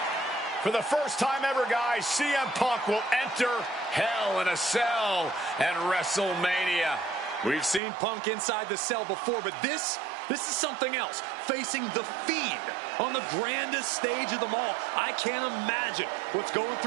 For the first time ever, guys, CM Punk will enter Hell in a Cell and WrestleMania. We've seen Punk inside the cell before, but this is something else. Facing The Fiend on the grandest stage of them all. I can't imagine what's going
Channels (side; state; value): left; drops out; at 7.8 s